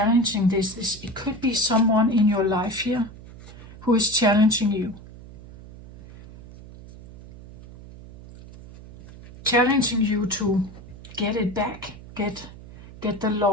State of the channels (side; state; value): right; noise; hum, 18 dB below the sound